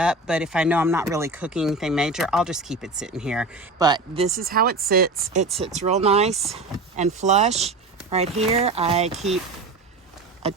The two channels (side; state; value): left; quieter; 3.3 dB